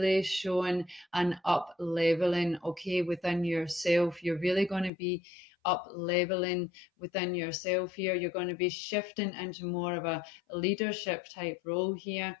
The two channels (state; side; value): drops out; right; at 4.9 s